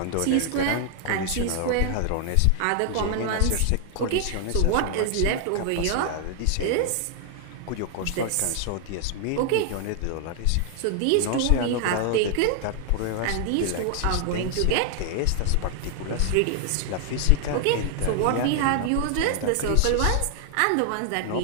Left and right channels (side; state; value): both; different; correlation 0.00